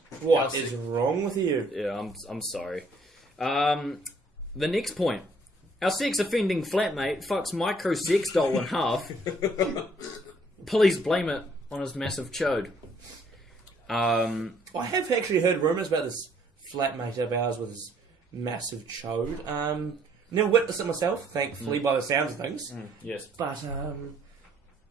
What is wrong with you? Yeah, I'm sorry. The next point. Our sex-offending flatmate fucks micro sex doll in half. Police blame it on his massive chode. I have actually heard rumours about this flatmate of ours with his massive chode. Never witnessed it myself, thankfully, by the sounds of things. Yes. But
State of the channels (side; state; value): both; normal; correlation 0.64